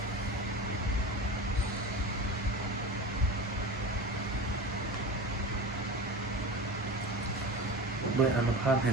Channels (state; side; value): normal; both; correlation 0.30